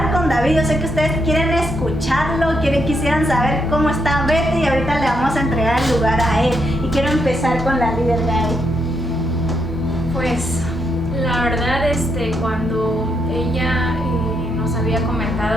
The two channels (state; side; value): normal; both; correlation 0.78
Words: con David. Yo sé que ustedes quieren escucharlo, quisieran saber cómo está Betty, y ahorita le vamos a entregar el lugar a él. Y quiero empezar con la líder Gaby. Pues la verdad, cuando ella nos había